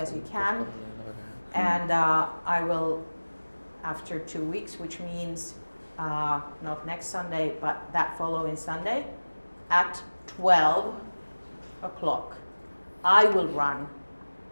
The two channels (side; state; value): both; inverted; correlation -1.00